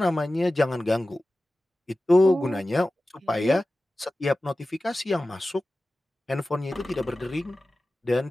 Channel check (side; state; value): both; normal; correlation 0.95